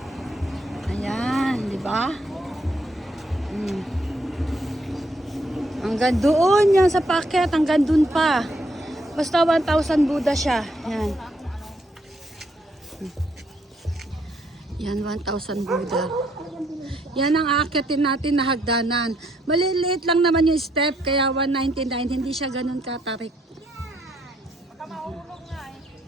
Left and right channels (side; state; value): both; normal; correlation 0.72